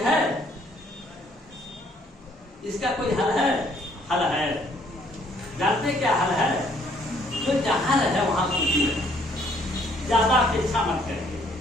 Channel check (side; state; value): both; normal; correlation 0.65